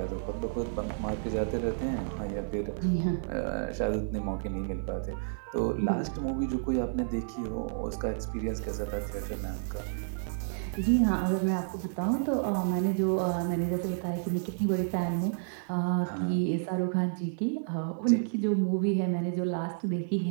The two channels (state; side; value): silent; left; digital silence